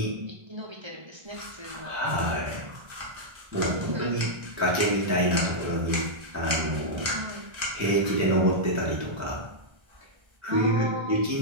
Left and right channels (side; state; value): left; late; 1.3 ms